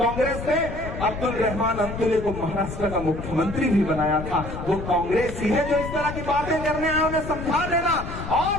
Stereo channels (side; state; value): left; noise; rumble, 8 dB below the sound